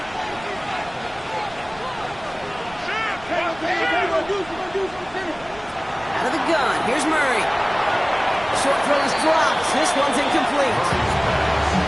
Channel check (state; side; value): noise; right; rumble, 22 dB below the sound